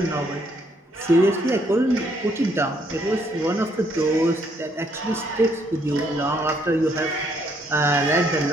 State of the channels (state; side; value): normal; both; correlation 0.69